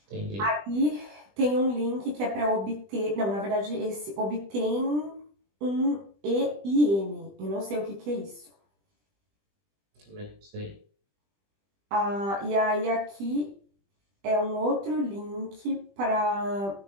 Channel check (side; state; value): left; late; 20 ms